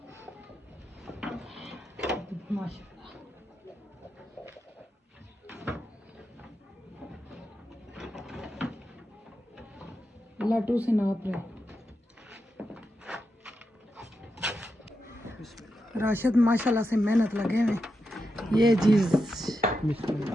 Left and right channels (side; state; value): both; normal; correlation 0.87